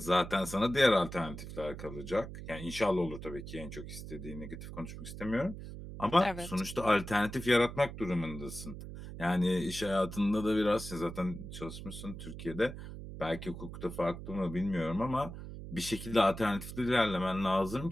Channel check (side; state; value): right; noise; hum, 10 dB below the sound